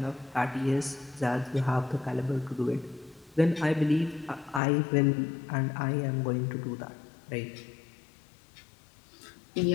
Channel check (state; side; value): drops out; right; at 4.6 s